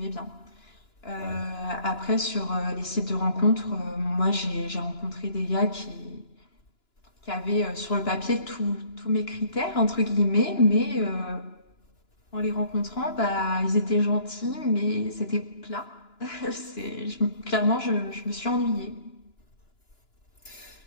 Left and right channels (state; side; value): late; right; 2.9 ms